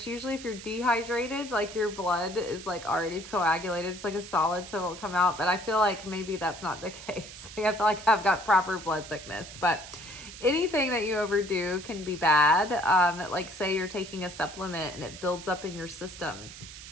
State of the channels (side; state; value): right; noise; hiss, 14 dB below the sound